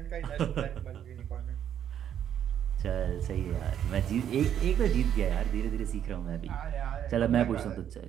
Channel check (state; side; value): quieter; left; 9.7 dB